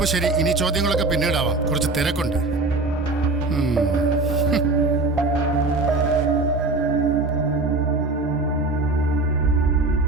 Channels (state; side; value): quieter; left; 3.2 dB